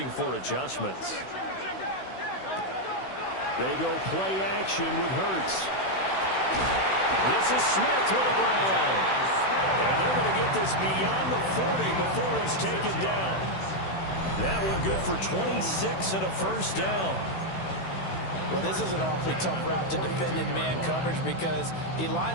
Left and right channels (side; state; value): right; late; 16 ms